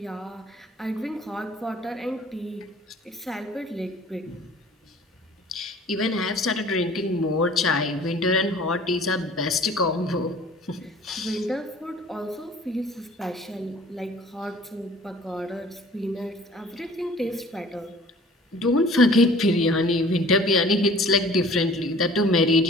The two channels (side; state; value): both; normal; correlation 0.49